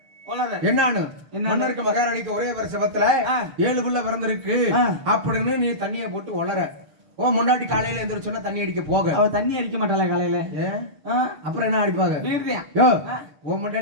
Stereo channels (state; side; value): late; left; 6.8 ms